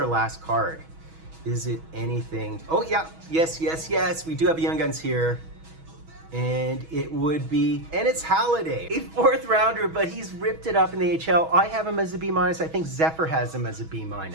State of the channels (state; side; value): late; left; 6.2 ms